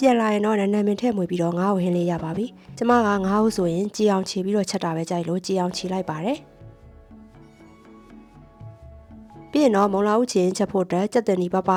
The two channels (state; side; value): identical; both; correlation 1.00